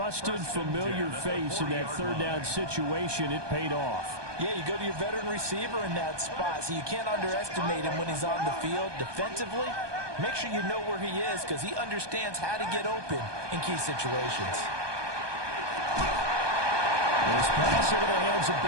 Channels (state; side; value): late; left; 1.2 ms